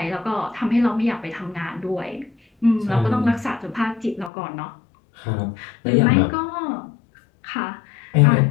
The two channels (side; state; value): right; drops out; at 4.3 s